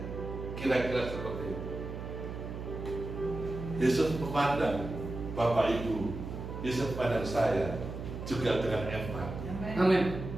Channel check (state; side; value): noise; right; hum, 8 dB below the sound